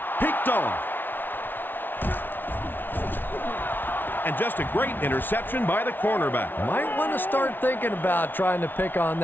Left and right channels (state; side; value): late; right; 0.095 ms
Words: Picked off. And just a great interception by the cornerback. Might want to start thinking about trying to pick on